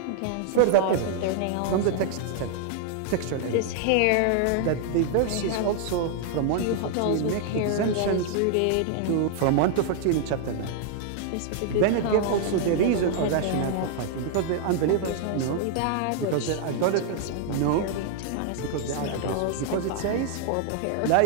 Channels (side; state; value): both; different; correlation 0.00